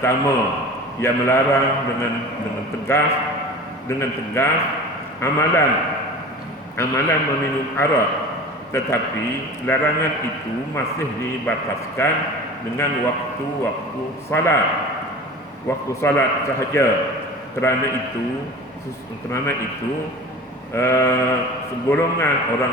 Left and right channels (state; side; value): normal; both; correlation 0.37